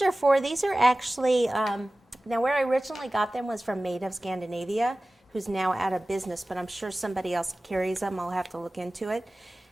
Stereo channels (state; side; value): normal; both; correlation 0.97